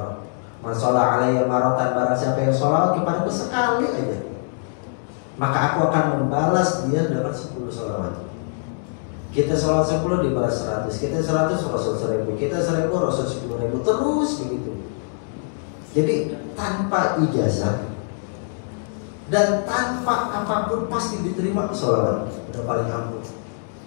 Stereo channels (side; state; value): right; silent; digital silence